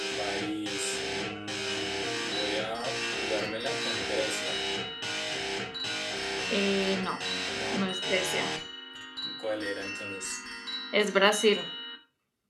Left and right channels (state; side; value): identical; both; correlation 1.00